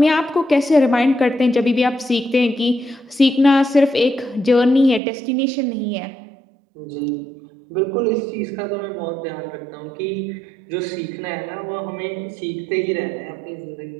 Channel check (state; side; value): drops out; left; at 5.0 s